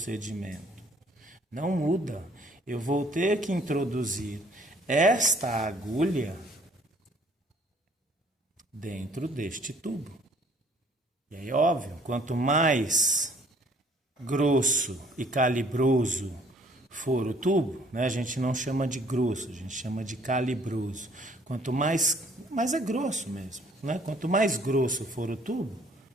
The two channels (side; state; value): both; normal; correlation 0.58